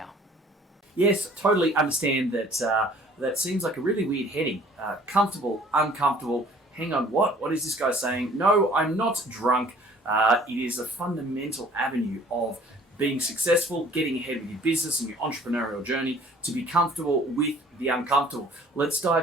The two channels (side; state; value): both; normal; correlation 0.54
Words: Yes, totally understand that. That seems like a really weird heading. Comfortable, uncomfortable. Hang on, what? What is this guy saying? No, I'm not drunk. It is a fundamental avenue of being successful, getting ahead with your business and your entrepreneurial journey, to be comfortable with the uncomfortable. Let's